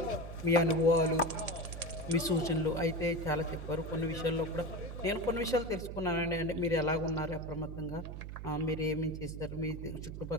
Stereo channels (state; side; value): noise; right; hum, 8 dB below the sound